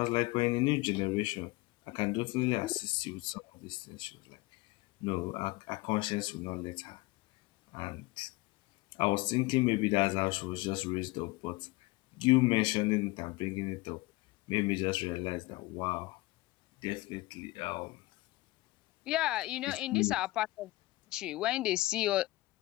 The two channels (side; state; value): right; quieter; 21.0 dB